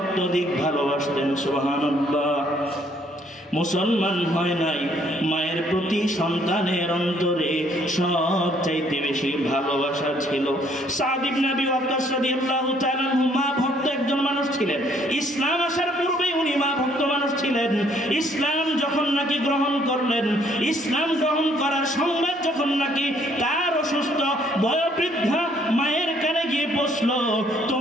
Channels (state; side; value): normal; both; correlation 0.65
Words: ভালোবাসতেন। সুবহানাল্লাহ। মুসলমান হয় নাই, মায়ের প্রতি সন্তানের অন্তরে সবচাইতে বেশি ভালোবাসা ছিল। সাআদ ইবনে আবি ওয়াক্কাস রাদিয়াল্লাহু তাআলা আনহু মা ভক্ত একজন মানুষ ছিলেন। ইসলাম আসার পূর্বেই উনি মা ভক্ত মানুষ ছিলেন। ইসলাম যখন নাকি গ্রহণ করলেন, ইসলাম গ্রহণ করার সংবাদ যখন নাকি তার অসুস্থ বয়োবৃদ্ধা মায়ের কানে গিয়ে পৌঁছলো,